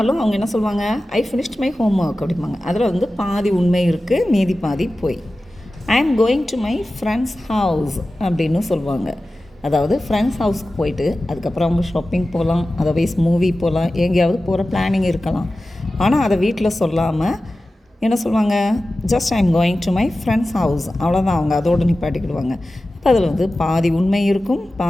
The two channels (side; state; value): both; normal; correlation 0.95